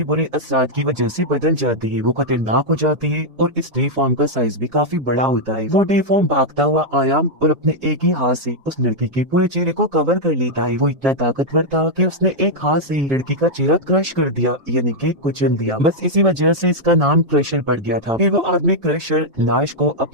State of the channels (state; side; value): late; left; 4.0 ms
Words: बुरे असरात की वजह से बदल जाते हैं, वो खतरनाक हो जाते हैं और इस डीफॉर्म का साइज भी काफी बड़ा होता है। वो डीफॉर्म भागता हुआ आया और अपने एक ही हाथ से उस लड़की के पूरे चेहरे को कवर कर लेता है। वो इतना ताकतवर था कि उसने एक हाथ से लड़की का चेहरा क्रश कर दिया, यानी कि कुचल दिया। बस इसी वजह से इसका नाम क्रशर पड़ गया था। फिर वो आदमी क्रशर लाश को